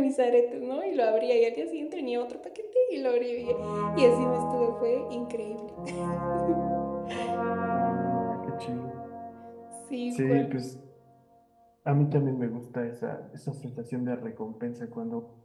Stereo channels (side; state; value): both; identical; correlation 1.00